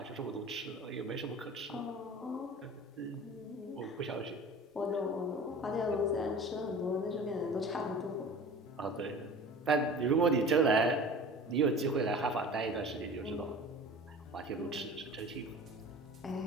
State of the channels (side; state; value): both; normal; correlation 0.39